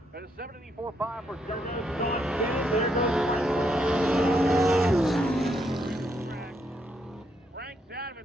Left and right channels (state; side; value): normal; both; correlation 0.76